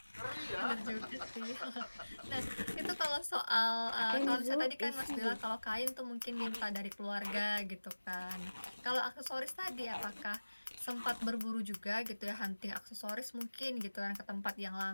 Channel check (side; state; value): both; inverted; correlation -1.00